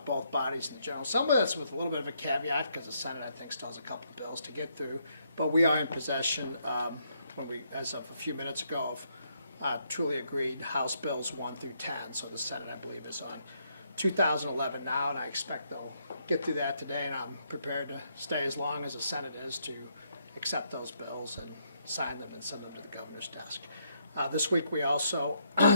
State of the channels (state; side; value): inverted; both; correlation -0.75